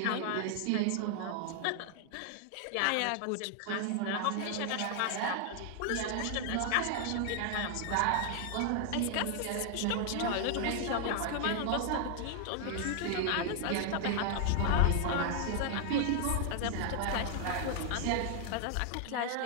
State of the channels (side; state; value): both; different; correlation 0.00